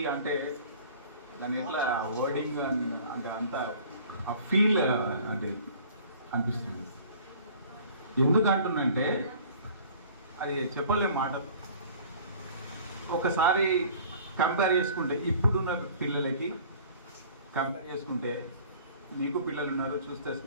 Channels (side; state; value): both; inverted; correlation -0.48